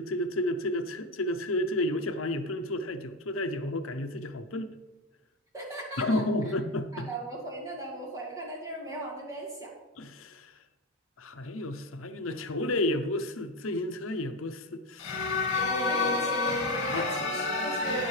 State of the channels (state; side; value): normal; both; correlation 0.15